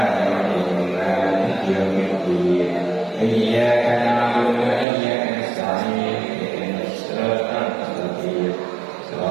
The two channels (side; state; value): left; drops out; at 4.9 s